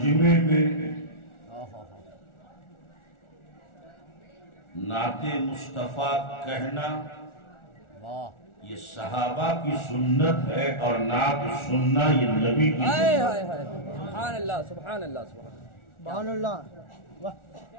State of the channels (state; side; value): late; right; 1.4 ms